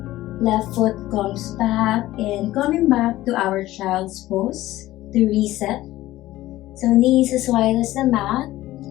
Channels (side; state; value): right; quieter; 16.0 dB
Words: Left foot comes back and coming back to our child's pose to reset. So knees as wide as the mat.